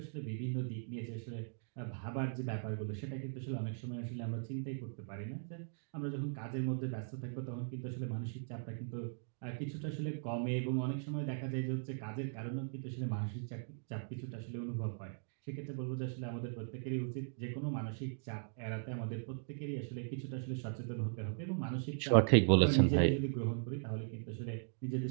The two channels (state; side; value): silent; left; digital silence